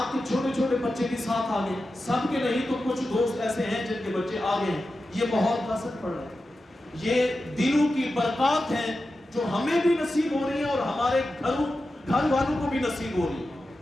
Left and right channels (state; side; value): normal; both; correlation 0.92